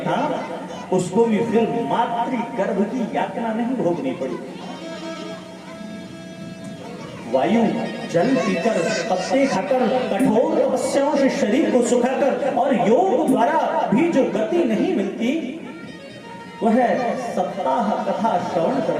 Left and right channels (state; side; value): identical; both; correlation 1.00